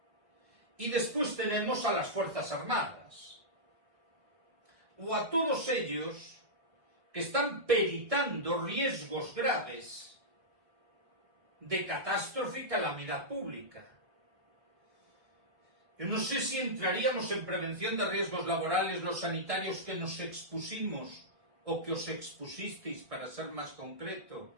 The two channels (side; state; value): left; late; 1.9 ms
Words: Y después tenemos a las Fuerzas Armadas, o a todos ellos que están peritando riesgos graves de catástrofe y calamidad pública. Yo no sé si entraríamos en prevención de riesgos laborales los sanitarios que nos expusimos o que os expusisteis, para ser más concreto,